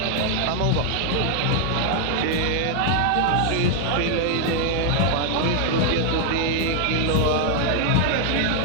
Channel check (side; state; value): both; different; correlation 0.00